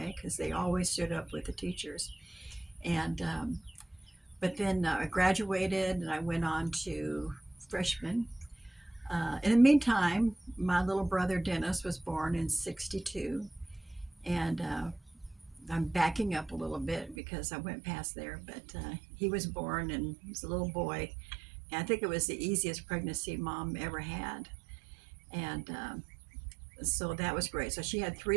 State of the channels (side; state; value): left; drops out; at 17.2 s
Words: because they always stood up with the teachers. And but then I graduated, and I went on to freshman. In the meantime, my little brother Dennis was born in '62, and I'm backing up a little bit because I went past there, but he was born, and he was a little boy. And I think it was the easiest pregnancy mom ever had. And so that was great. So she had